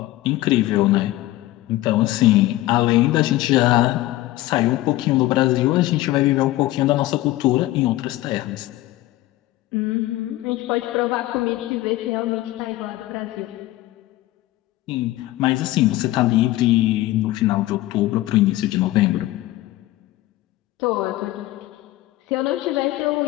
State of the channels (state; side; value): quieter; right; 16.6 dB